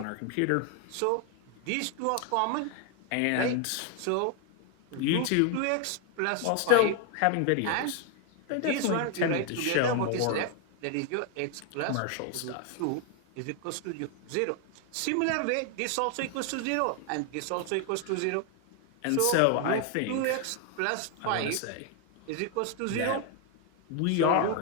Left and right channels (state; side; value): different; both; correlation 0.01